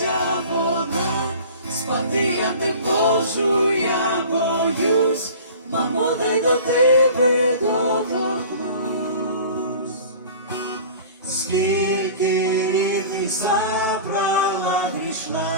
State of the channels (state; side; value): inverted; both; correlation -0.41